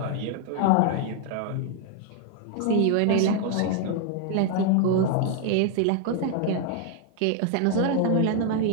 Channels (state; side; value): different; both; correlation 0.00